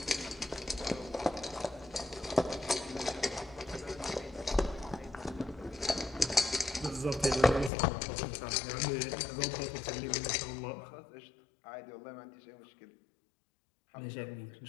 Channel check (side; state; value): right; drops out; at 7.7 s